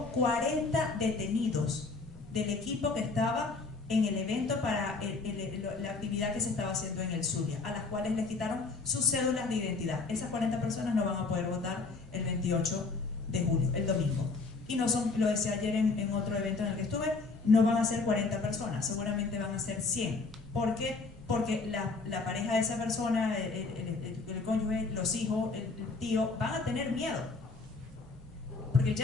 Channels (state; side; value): quieter; right; 4.0 dB